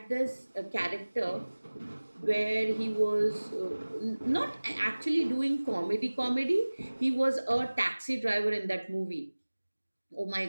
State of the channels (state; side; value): inverted; both; correlation -1.00